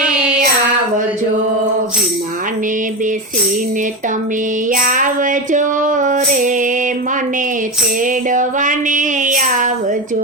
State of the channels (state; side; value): normal; both; correlation 0.18